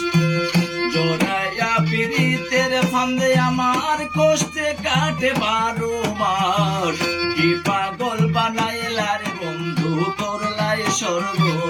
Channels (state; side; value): identical; both; correlation 1.00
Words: জড়াইয়া পিরিতের ফান্দে আমার কষ্টে কাটে 12 মাস। কি পাগল বানাইলা রে বন্ধু, করলাই